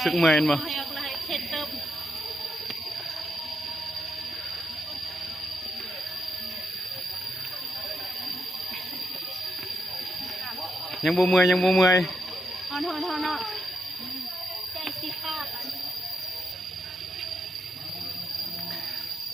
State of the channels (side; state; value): both; normal; correlation 0.81